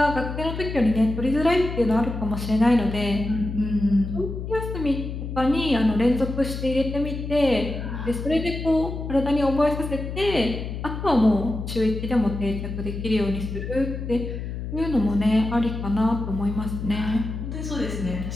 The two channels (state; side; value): noise; left; hum, 6 dB below the sound